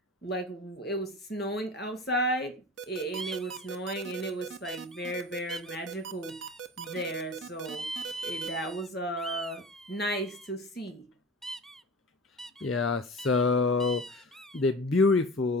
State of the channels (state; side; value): normal; both; correlation 0.34